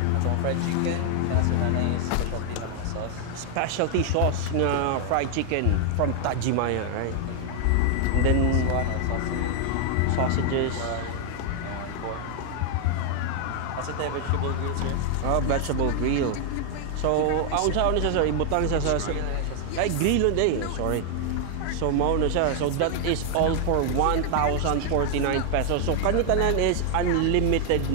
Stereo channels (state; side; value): different; both; correlation 0.00